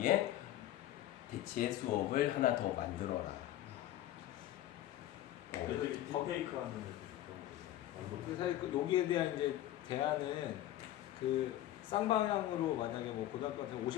대체 수업을 하나 더 만들어라. 애들이 딥페이크 하는 애들 근데 사실 여기에 대한 이제 대안은 그 쌍방향으로 만약에 뭐 고등학교 같은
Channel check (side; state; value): right; quieter; 13.6 dB